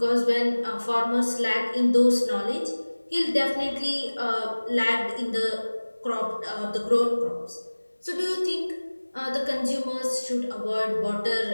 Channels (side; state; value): both; inverted; correlation -1.00